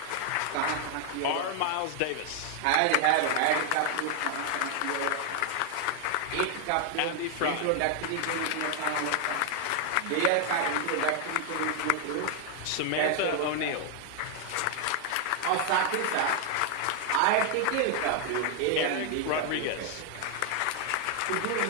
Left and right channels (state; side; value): different; both; correlation 0.00